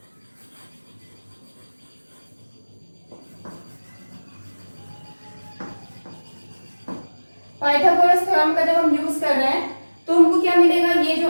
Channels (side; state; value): both; inverted; correlation -1.00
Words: Pythagoras theorem का जब हम यूज कर रहे हैं तो हमको क्या मिलेगा, ये जो